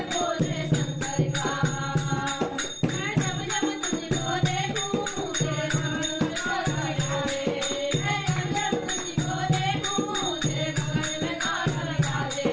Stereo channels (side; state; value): both; identical; correlation 1.00